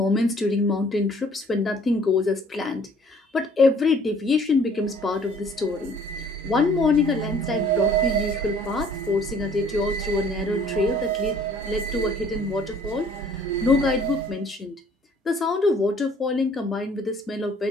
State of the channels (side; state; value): both; normal; correlation 0.56